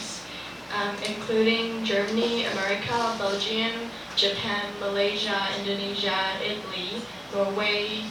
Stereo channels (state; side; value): identical; both; correlation 1.00